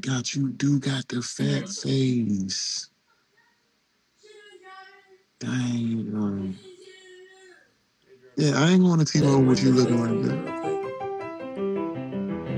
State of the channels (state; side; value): identical; both; correlation 1.00